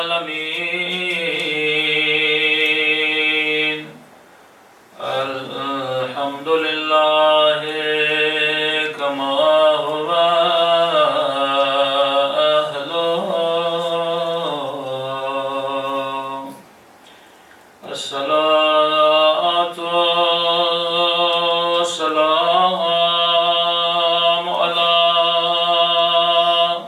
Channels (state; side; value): identical; both; correlation 1.00